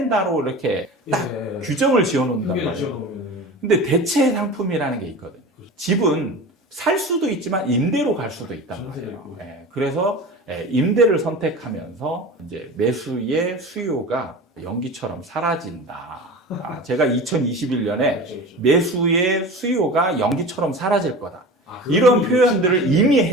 이렇게 딱 규정을 지어놓는단 말이에요. 근데 대체 상품이라는 게 있거든요. 집은 살 수도 있지만 임대로 갈 수도 있단 말이에요. 그래서 임대를 선택하면서 이제 매수의 수요가 연기처럼 사라진다. 제가 2021년에 매수의 수요가 연기처럼 사라질 거다. 이런 표현들을 이미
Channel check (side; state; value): both; normal; correlation 0.33